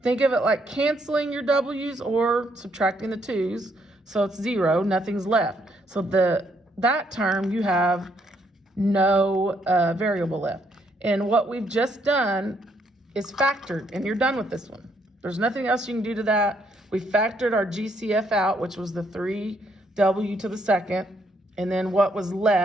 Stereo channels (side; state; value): both; normal; correlation 0.72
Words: think of it like canceling your W's or subtracting the 2's. So it's 0, nothing's left. So that term, you have no variable left. And what we've just done is factored, and you're done with this one. There's nothing else you can do to that. We factored our GCF out, which was the 3W to the second. And then what was